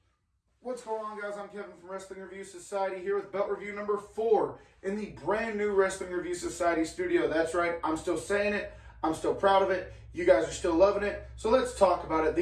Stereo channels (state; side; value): identical; both; correlation 1.00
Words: What's going on, guys? I'm Kevin from Wrestling Review Society here with belt review number 4 in the brand new Wrestling Review Society studio. That's right, I'm still saying it. I'm still proud of it. You guys are still loving it. So let's talk about it.